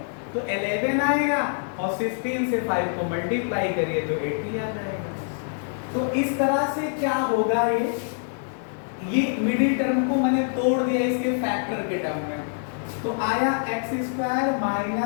तो 11 आएगा और 16 से 5 को मल्टीप्लाई करिए तो 80 आ जाएगा। तो इस तरह से क्या होगा? ये मिडिल टर्म को मैंने तोड़ दिया इसके फैक्टर के टर्म में। तो आया x²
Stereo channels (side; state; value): right; silent; digital silence